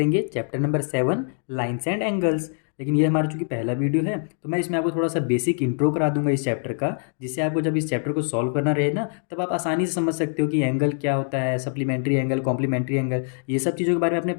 Chapter number 7, lines and angles. लेकिन ये हमारा चूंकि पहला वीडियो है तो मैं इसमें आपको थोड़ा सा बेसिक इंट्रो करा दूंगा इस चैप्टर का, जिससे आपको जब इस चैप्टर को सॉल्व करना रहे ना, तब आप आसानी से समझ सकते हो कि एंगल क्या होता है, सप्लीमेंट्री एंगल, कॉम्प्लीमेंट्री एंगल। ये सब चीज़ों के बारे में आपने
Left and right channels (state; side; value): silent; right; 63 dB below the other